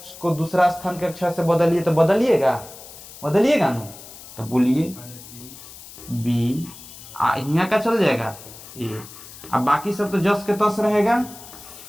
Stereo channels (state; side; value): noise; left; hiss, 17 dB below the sound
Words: को दूसरा स्थान के अक्षर से बदलिए, तो बदलिएगा ना। तो बोलिए बी, यहाँ का चल जाएगा ए, अब बाकी सब तो जस के तस रहेगा,